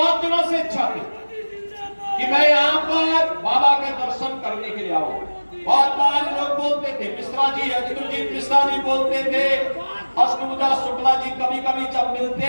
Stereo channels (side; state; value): both; inverted; correlation -1.00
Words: दिनों से इच्छा थी कि मैं यहाँ पर बाबा के दर्शन करने के लिए आऊं। बहुत बार लोग बोलते थे, मिश्रा जी, अजितुलजीत मिश्रा जी बोलते थे, अष्टभुजा शुक्ला जी कभी कभी जब मिलते